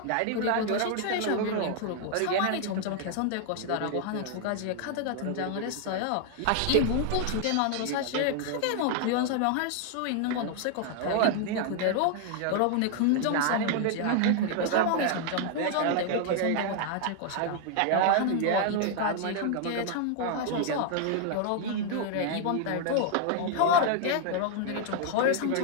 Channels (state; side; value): different; both; correlation 0.00